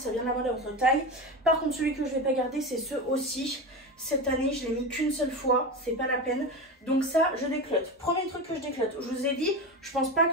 vient de la mode à votre taille. Par contre, celui que je ne vais pas garder, c'est ce aussi. Cette année, je l'ai mis qu'une seule fois. C'est pas la peine. Donc ça, je déclote. Premier truc que je déclote. Je vous ai dit, je pense pas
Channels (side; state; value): both; normal; correlation 0.23